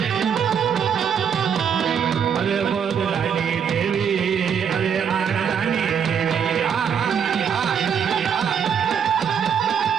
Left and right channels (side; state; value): left; quieter; 7.5 dB